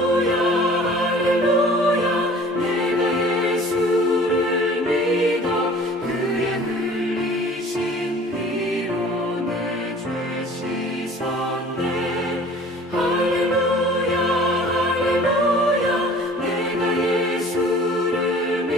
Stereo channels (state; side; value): normal; both; correlation 0.48